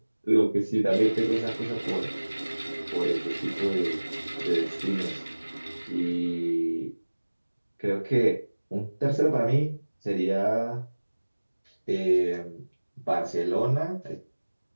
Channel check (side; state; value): both; inverted; correlation -1.00